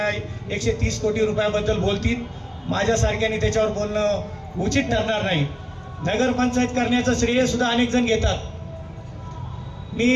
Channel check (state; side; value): identical; both; correlation 1.00